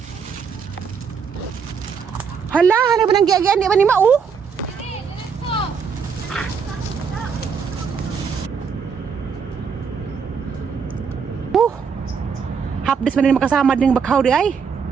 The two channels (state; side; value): quieter; left; 6.3 dB